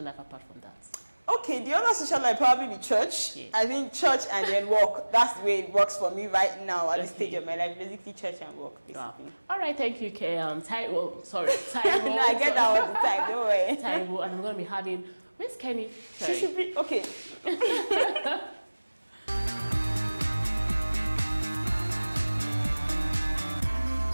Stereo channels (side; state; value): both; inverted; correlation -1.00